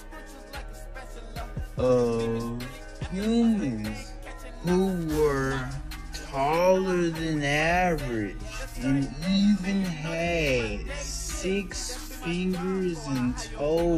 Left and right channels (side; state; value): both; identical; correlation 1.00